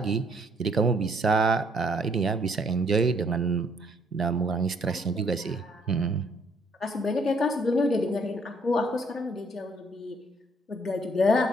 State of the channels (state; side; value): normal; both; correlation 0.66